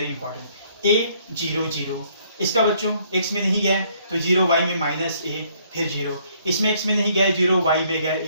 important. a 0 0, इसका बच्चों x में नहीं गया तो 0, y में -a फिर 0, इसमें x में नहीं गया 0, y में गया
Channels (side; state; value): both; inverted; correlation -0.65